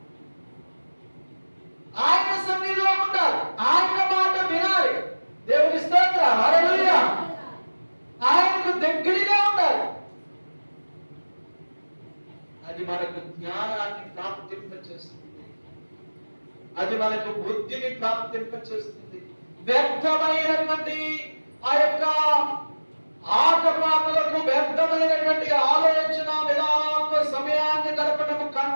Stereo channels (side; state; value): both; inverted; correlation -1.00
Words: ఆయన సన్నిధిలో ఉండాలి, ఆయన మాట వినాలి. దేవుని స్తోత్రం, హల్లెలూయా. ఆయనకు దగ్గరగా ఉండాలి. అది మనకు జ్ఞానాన్ని ప్రాప్తింపచేస్తుంది, అది మనకు బుద్ధిని ప్రాప్తింపచేస్తుంది. వ్యర్థమైనటువంటి ఆ యొక్క ఆటపాటలకు, వ్యర్థమైనటువంటి ఆలోచన విధానాలతో సమయాన్ని గడపడం